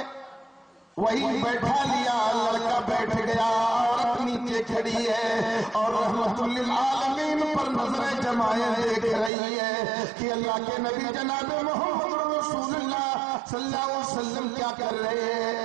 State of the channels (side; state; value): left; drops out; at 9.3 s